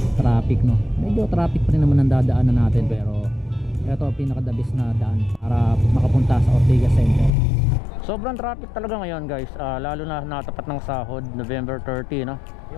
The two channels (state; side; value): drops out; right; at 7.3 s